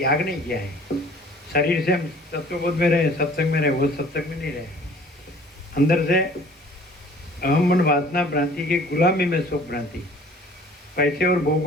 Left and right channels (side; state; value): both; normal; correlation 0.51